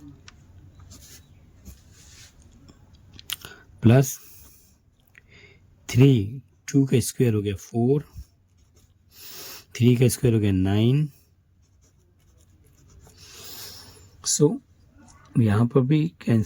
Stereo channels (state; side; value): identical; both; correlation 1.00